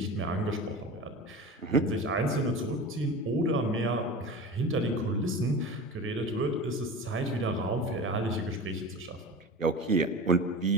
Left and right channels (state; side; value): normal; both; correlation 0.32